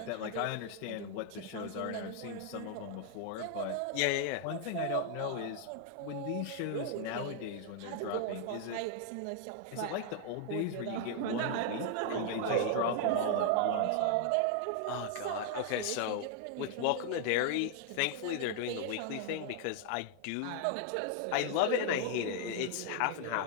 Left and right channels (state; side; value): different; both; correlation 0.00